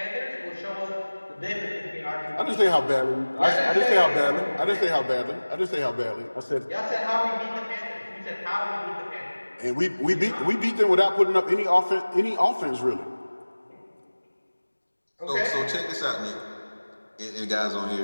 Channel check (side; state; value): both; inverted; correlation -1.00